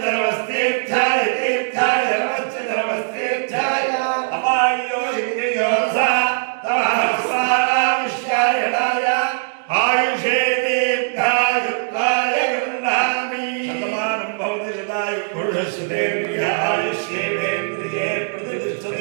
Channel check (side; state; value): left; silent; digital silence